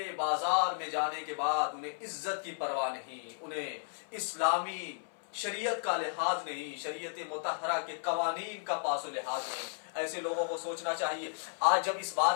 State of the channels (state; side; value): silent; right; 55 dB below the other